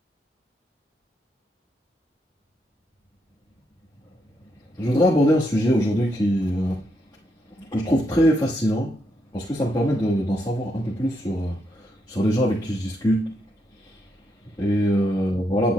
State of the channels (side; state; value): both; normal; correlation 0.79